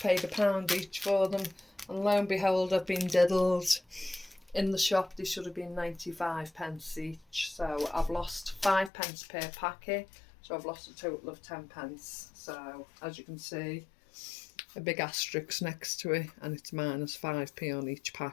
£1 each for them, and lo and behold, I've been diddled. In the shop, they should have been 95p each, so I've lost 5p per packet, so I've lost a total of 10p. So as you can see, a big asterisk next to it, and it's minus 5p on each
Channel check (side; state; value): right; drops out; at 8.9 s